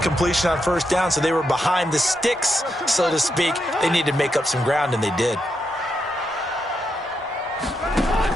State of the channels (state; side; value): normal; both; correlation 0.83